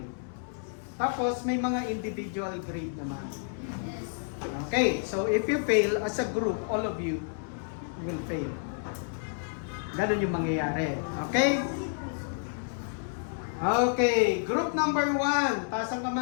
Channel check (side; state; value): right; silent; 57 dB below the other